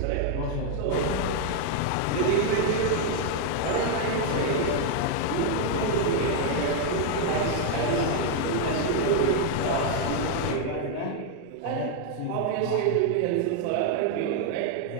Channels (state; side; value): different; both; correlation 0.00